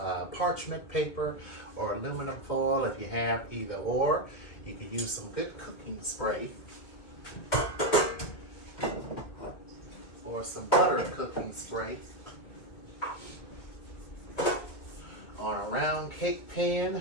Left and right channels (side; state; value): right; late; 2.5 ms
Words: parchment paper or aluminum foil if you have either or. You can use some good cooking spray or some butter cooking spray on a round cake